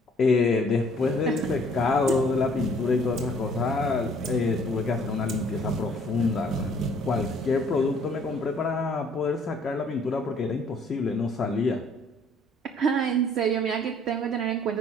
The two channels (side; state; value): both; normal; correlation 0.59